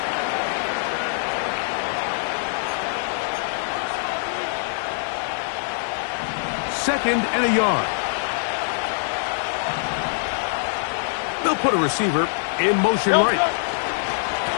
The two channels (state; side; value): silent; right; digital silence